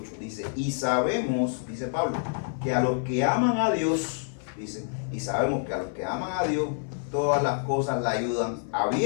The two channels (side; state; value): right; silent; 59 dB below the other